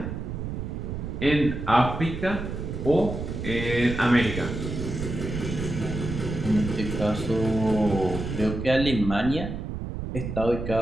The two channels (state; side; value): noise; right; rumble, 5 dB below the sound